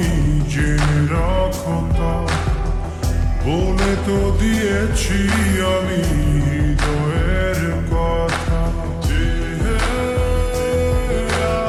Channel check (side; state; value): both; identical; correlation 1.00